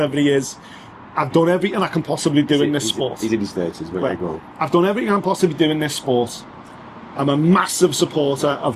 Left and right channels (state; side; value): identical; both; correlation 1.00